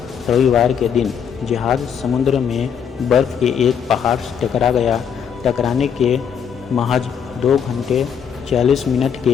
रविवार के दिन जहाज़ समुद्र में बर्फ़ के एक पहाड़ से टकरा गया। टकराने के महज 2 घंटे 40 मिनट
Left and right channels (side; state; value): right; quieter; 7.6 dB